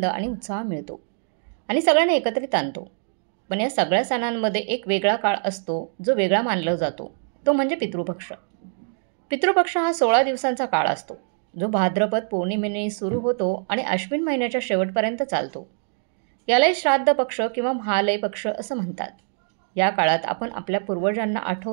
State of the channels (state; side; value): silent; left; digital silence